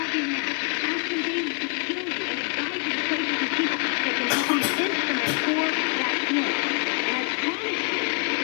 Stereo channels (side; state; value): right; quieter; 34.2 dB